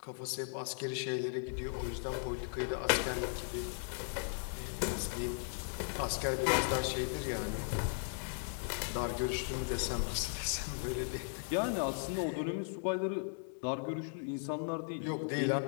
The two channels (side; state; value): right; silent; digital silence